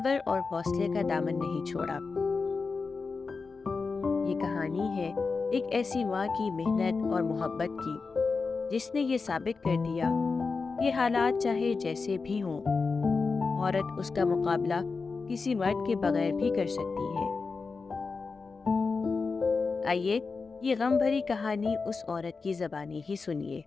اور حوصلے کا دامن نہیں چھوڑا۔ یہ کہانی ہے ایک ایسی ماں کی محنت اور محبت کی جس نے یہ ثابت کر دیا کہ حالات چاہے جیسے بھی ہوں، عورت اس کا مقابلہ کسی مرد کے بغیر بھی کر سکتی ہے۔ آئیے یہ غم بھری کہانی اس عورت کی زبانی ہی سنیے۔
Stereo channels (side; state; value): right; quieter; 4.5 dB